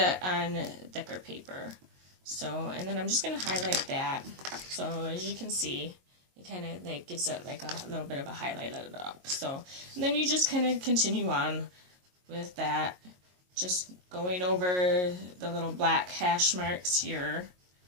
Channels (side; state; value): left; late; 22 ms